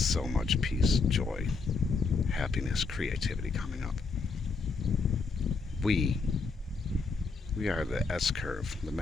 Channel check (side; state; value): right; quieter; 4.3 dB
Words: much peace, joy, happiness, creativity coming up. We are the S-curve, the